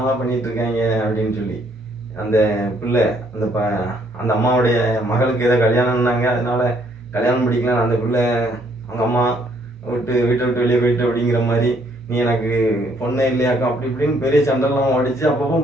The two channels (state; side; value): normal; both; correlation 0.67